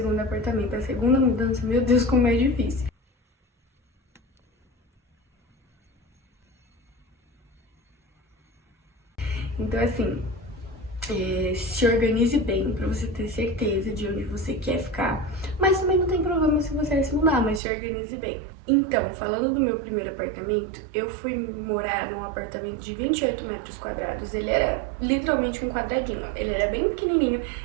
apartamento. A segunda mudança, meu Deus, como é difícil. Então assim, se organize bem pra você ter certeza de onde você quer ficar. Mas também não tem problema se você se mudar, mas se organize bem. Então, falando do meu primeiro apartamento, eu fui morar num apartamento de 28 metros quadrados. Ele era literalmente um quadradinho. Ele era bem pequenininho,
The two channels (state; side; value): drops out; left; at 17.6 s